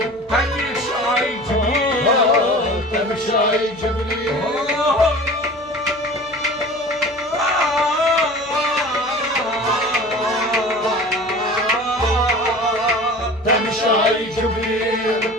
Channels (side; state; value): left; noise; hum, 28 dB below the sound